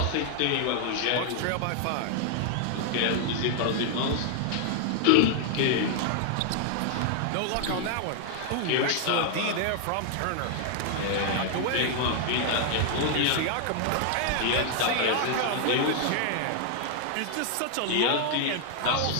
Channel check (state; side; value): different; both; correlation 0.00